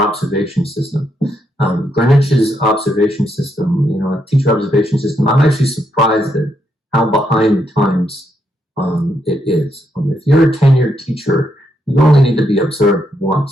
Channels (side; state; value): both; normal; correlation 0.78